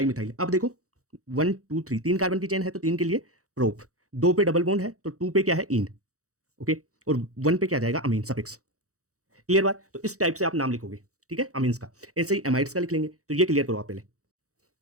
मिथाइल। अब देखो 1 2 3, 3 कार्बन की चेन है तो 3 के लिए प्रोप, 2 पे डबल बॉन्ड है तो 2 पे क्या है, इन। ओके, और 1 पे क्या जाएगा, अमीन सफिक्स। क्लियर बात? तो इस टाइप से आप नाम लिखोगे, ठीक है, अमीन्स का। ऐसे ही एमाइड्स का लिख लेंगे, तो ये क्लियर करो आप पहले।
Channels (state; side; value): late; left; 0.65 ms